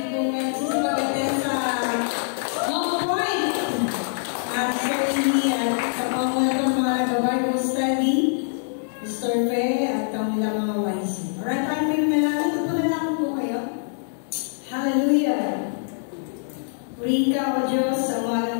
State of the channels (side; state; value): right; silent; digital silence